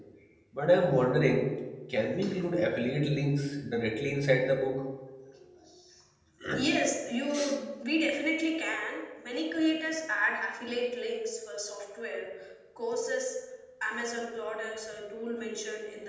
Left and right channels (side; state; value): both; identical; correlation 1.00